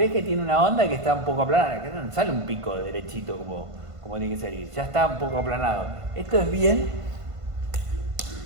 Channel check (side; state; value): left; late; 1.5 ms